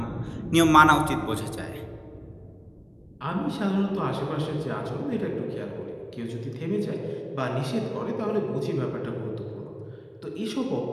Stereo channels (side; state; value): both; identical; correlation 1.00